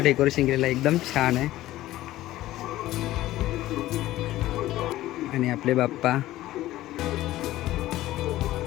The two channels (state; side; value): quieter; right; 15.5 dB